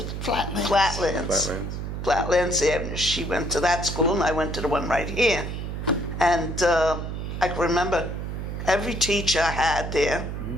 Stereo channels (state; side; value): noise; right; hum, 5 dB below the sound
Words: Flatlands. Flatlands. Flatlands Avenue. She went to that school and I went to the one right here. And I can remember every teacher I had there. Mm-hmm.